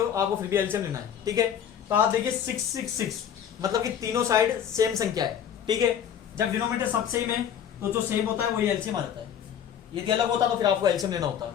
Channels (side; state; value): right; quieter; 8.9 dB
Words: आपको फिर भी एलसीएम लेना है, ठीक है। तो आप देखिए 6 6 6 मतलब कि तीनों साइड सेम संख्या है, ठीक है। जब डिनोमिनेटर सब सेम है तो जो सेम होता है वही एलसीएम आ जाता है, यदि अलग होता तो फिर आपको एलसीएम लेना होता,